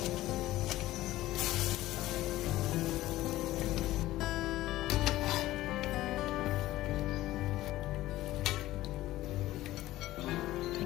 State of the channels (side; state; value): right; quieter; 15.9 dB